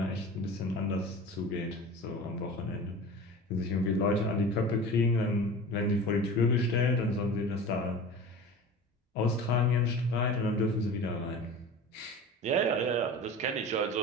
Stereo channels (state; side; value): normal; both; correlation 0.35